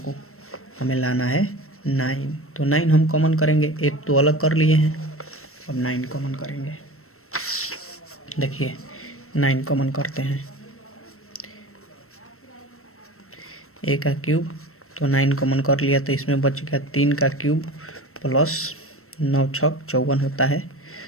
हमें लाना है 9, तो 9 हम कॉमन करेंगे। 8 तो अलग कर लिए हैं, अब 9 कॉमन करेंगे। देखिए 9 कॉमन करते हैं, a का क्यूब, तो 9 कॉमन कर लिया तो इसमें बच गया 3 का क्यूब प्लस 9 6 54 होता है।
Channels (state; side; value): late; right; 0.63 ms